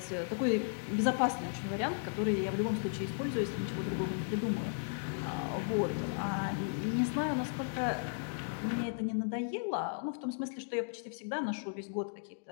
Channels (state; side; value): silent; right; digital silence